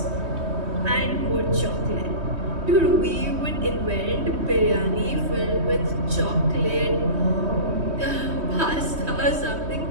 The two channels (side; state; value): left; late; 3.2 ms